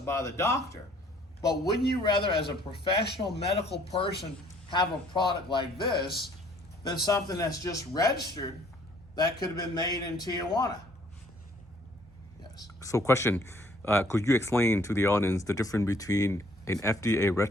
by the doctor, but wouldn't you rather, as a professional medical person, have a product like this than something that's just registered that could have been made in Tijuana? Yes. So question, could you explain to the audience the difference between An FDA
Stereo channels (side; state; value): both; normal; correlation 0.60